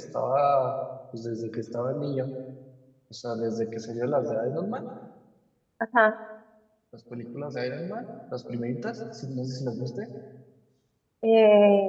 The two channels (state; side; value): identical; both; correlation 1.00